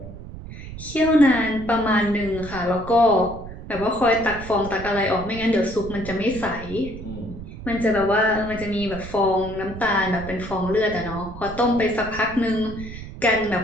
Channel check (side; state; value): right; noise; rumble, 12 dB below the sound